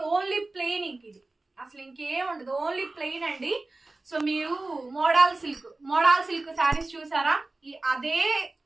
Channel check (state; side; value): quieter; left; 3.1 dB